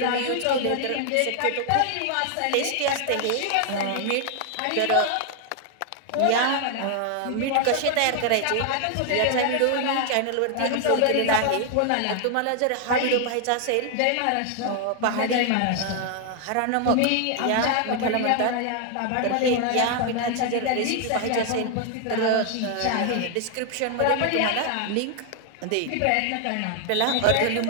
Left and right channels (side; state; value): both; different; correlation 0.00